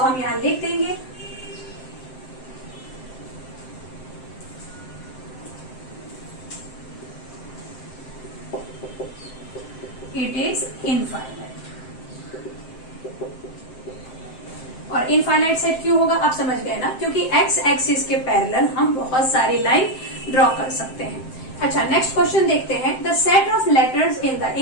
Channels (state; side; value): late; right; 7.7 ms